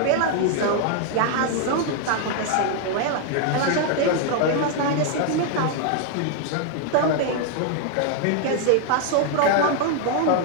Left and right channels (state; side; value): different; both; correlation 0.00